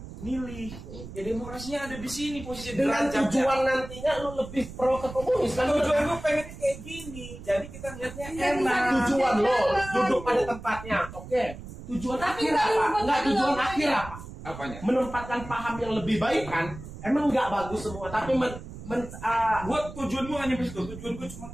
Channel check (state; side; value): noise; right; rumble, 13 dB below the sound